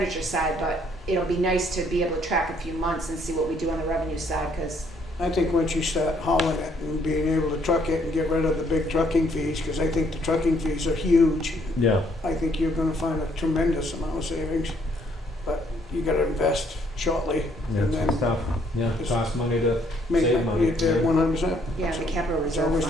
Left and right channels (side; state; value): both; normal; correlation 0.67